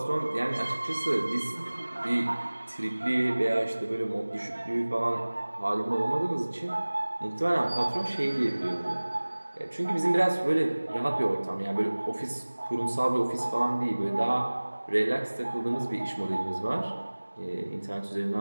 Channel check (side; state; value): both; inverted; correlation -1.00